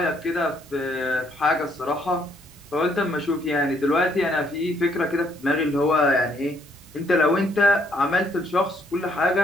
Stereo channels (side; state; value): both; normal; correlation 0.69